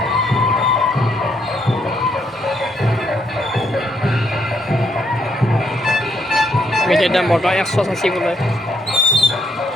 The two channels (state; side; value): normal; both; correlation 0.73